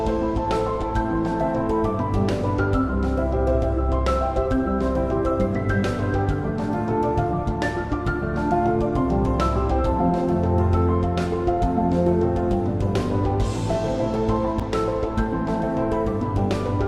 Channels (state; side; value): identical; both; correlation 1.00